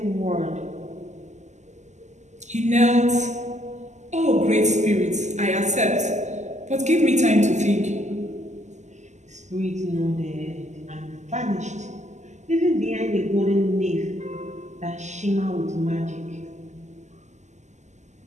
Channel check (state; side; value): late; left; 0.34 ms